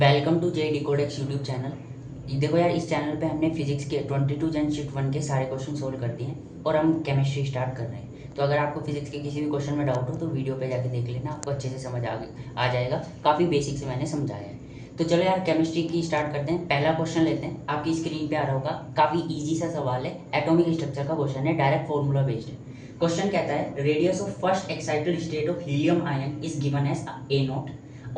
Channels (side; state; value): both; identical; correlation 1.00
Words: to J Decodex YouTube channel. देखो यार, इस चैनल पे हमने फिजिक्स के 22 जन शीट 1 के सारे क्वेश्चन सोल्व कर दिए हैं और हम केमिस्ट्री स्टार्ट कर रहे हैं। तो अगर आपको फिजिक्स के किसी भी क्वेश्चन में डाउट हो तो वीडियो पे जाके देख लेना, आपको अच्छे से समझ आ जाएगा। काफ़ी बेसिक से मैंने समझाया है। तो चलो यार, केमिस्ट्री की स्टार्ट करते हैं। पहला क्वेश्चन लेते हैं, आपकी स्क्रीन पे आ रहा होगा। काफ़ी ईजी सा सवाल है, एटॉमिक स्ट्रक्चर का क्वेश्चन है, डायरेक्ट फॉर्मूला बेस्ड है। क्वेश्चन कहता है radius of first excited state of helium ion is given as a naught